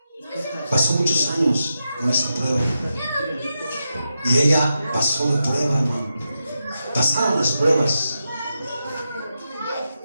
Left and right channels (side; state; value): both; inverted; correlation -0.88